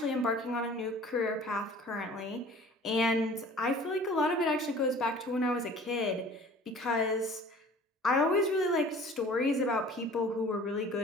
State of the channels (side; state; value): both; normal; correlation 0.47